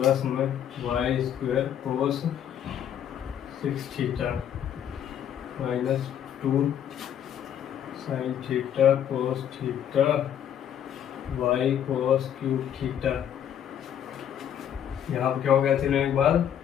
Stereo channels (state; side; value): quieter; right; 9.6 dB